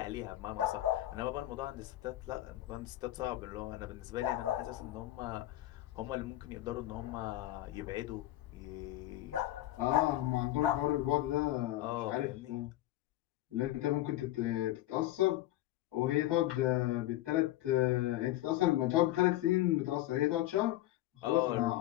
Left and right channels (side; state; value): right; quieter; 15.3 dB